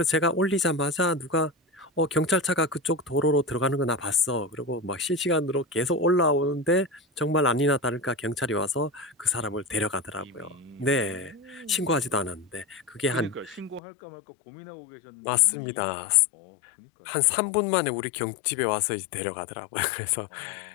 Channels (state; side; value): drops out; right; at 13.8 s